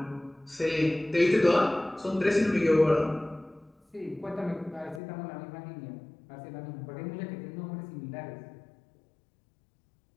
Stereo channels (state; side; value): drops out; right; at 5.0 s